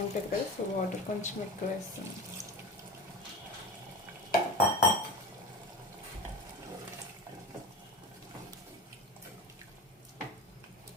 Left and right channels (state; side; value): normal; both; correlation 0.29